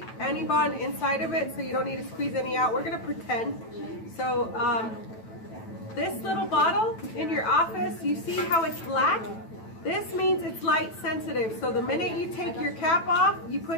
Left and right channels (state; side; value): late; right; 9.1 ms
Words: any bond inside of it, so you don't need to squeeze any out. We're going to pretend. So this little bottle in your office, you see how it's black? This means it's light sensitive. So the minute you take your cap off, you